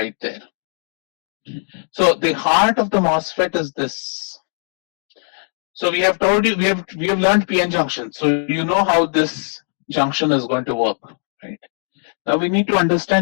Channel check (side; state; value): right; silent; digital silence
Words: there. So the heart of the MOSFET is this. So we have told you, we have learned PN junction. So you know how this junction is going to work, right? Now we need to